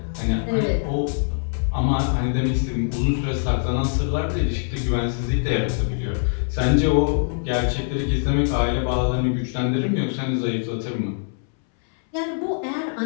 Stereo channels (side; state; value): right; silent; 63 dB below the other